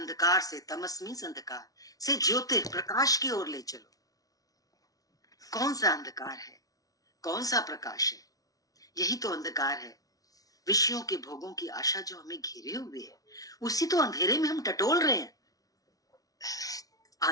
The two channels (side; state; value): right; late; 0.18 ms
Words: से, तमस मीन्स अंधकार से, ज्योतिर प्रकाश की ओर ले चलो। कौन सा अंधकार है? कौन सा प्रकाश है? यही तो अंधकार है। विषयों के भोगों की आशा जो हमें घेरे हुए है, उसी तो अंधेरे में हम टटोल रहे हैं